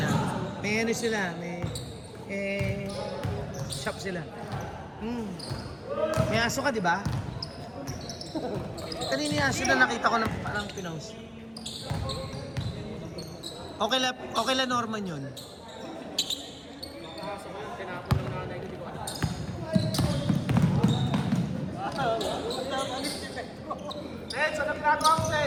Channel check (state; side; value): identical; both; correlation 1.00